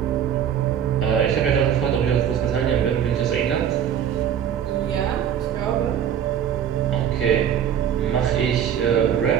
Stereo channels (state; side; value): quieter; left; 9.1 dB